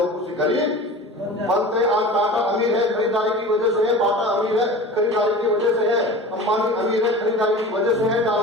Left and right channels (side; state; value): both; normal; correlation 0.36